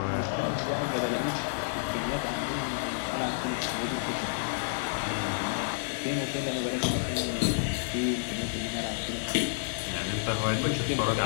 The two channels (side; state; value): right; silent; digital silence